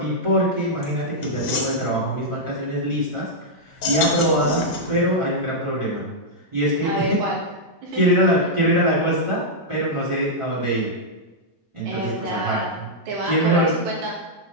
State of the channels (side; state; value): both; normal; correlation -0.07